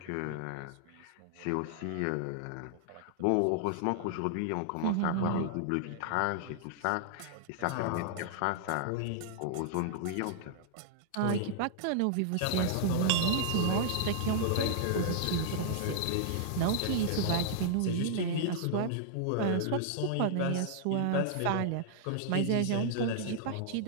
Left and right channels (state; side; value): different; both; correlation -0.01